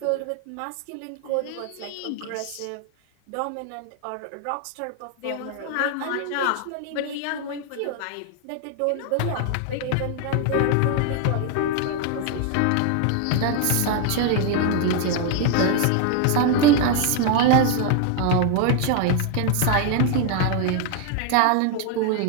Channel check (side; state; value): both; different; correlation 0.00